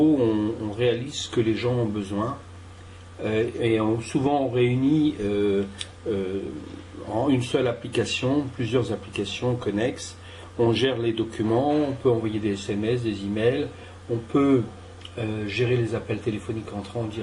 on réalise ce que les gens ont besoin et souvent on réunit en une seule application, plusieurs applications connexes. On gère les documents, on peut envoyer des SMS, des emails, on peut gérer les appels téléphoniques entrant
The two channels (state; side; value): identical; both; correlation 1.00